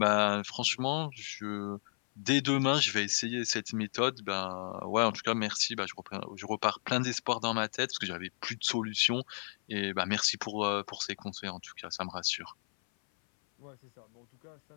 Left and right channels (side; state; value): right; silent; 55 dB below the other